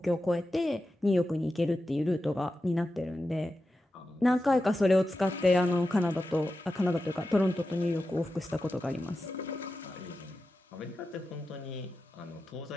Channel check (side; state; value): both; normal; correlation 0.91